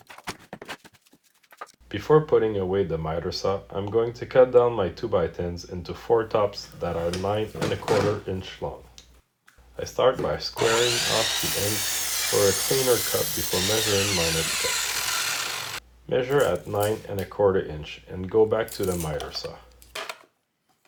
Before putting away the miter saw, I'm going to cut down my 2x10s into 4 tops that are 9¼ inch long. I start by squaring off the ends for a cleaner cut before measuring my next cut. Measure at 9¼ inch and go back to the miter saw.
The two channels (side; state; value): both; identical; correlation 1.00